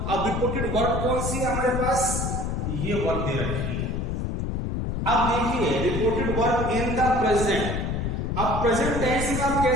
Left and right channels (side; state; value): left; noise; rumble, 2 dB below the sound